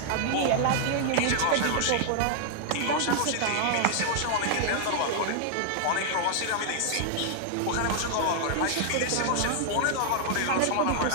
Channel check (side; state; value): both; different; correlation 0.00